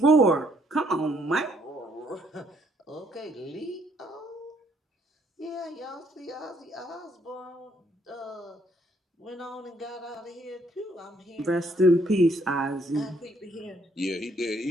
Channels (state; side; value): normal; both; correlation 0.68